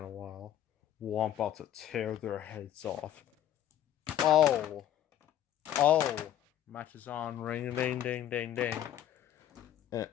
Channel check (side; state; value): right; quieter; 11.3 dB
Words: a while. Well, I'm about to tear their heads off. Oh! Match is on. Ring, ding, ding, ding, ding.